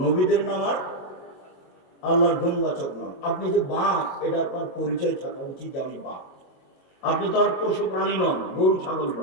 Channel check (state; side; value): late; right; 22 ms